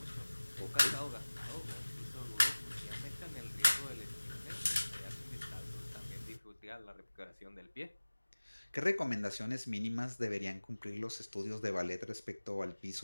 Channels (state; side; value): inverted; both; correlation -1.00